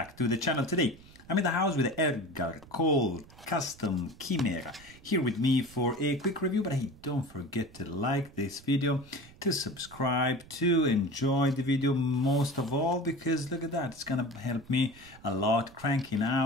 to the channel. Today I'm in the house with Edgar Cole Chimera here with me for a quick review, but hey, don't forget to like this video, to subscribe, to enjoy the video most of all, because look at that, it's gonna help me a lot cranking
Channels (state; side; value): noise; right; rumble, 22 dB below the sound